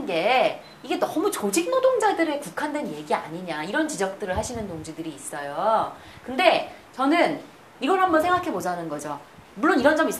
게 이게 너무 조직 노동자들에 국한된 얘기 아니냐 이런 지적들을 하시는 동지들이 있어요. 근데 저는 이걸 한번 생각해 보자는 거죠. 물론 이런 점이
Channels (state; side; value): identical; both; correlation 1.00